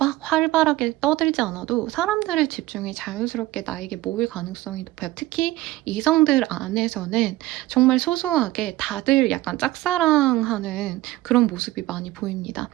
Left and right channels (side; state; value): left; quieter; 17.4 dB